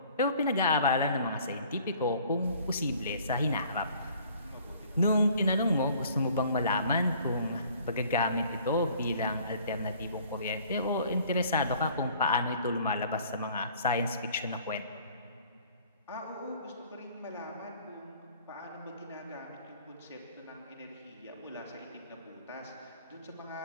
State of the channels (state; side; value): inverted; both; correlation -0.54